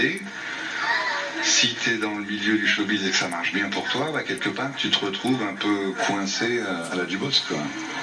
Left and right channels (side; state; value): both; identical; correlation 1.00